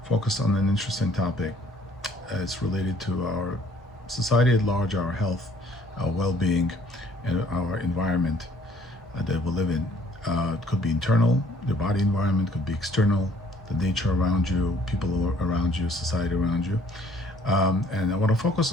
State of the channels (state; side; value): normal; both; correlation 0.59